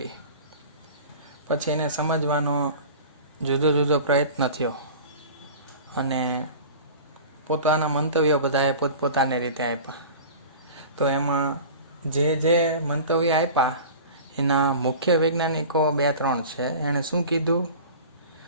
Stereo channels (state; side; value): inverted; both; correlation -0.37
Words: પછી એને સમજવાનો જુદો જુદો પ્રયત્ન થયો અને પોતાના મંતવ્યો બધાએ પોતપોતાની રીતે આપ્યા. તો એમાં જે મંતવ્ય આપ્યા એના મુખ્ય વૈજ્ઞાનિકો 2-3 છે. એણે શું કીધું